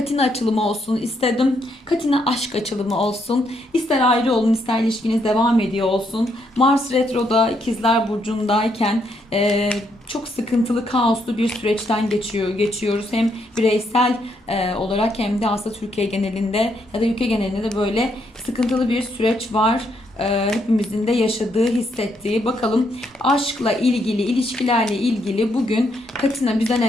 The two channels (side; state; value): both; normal; correlation 0.75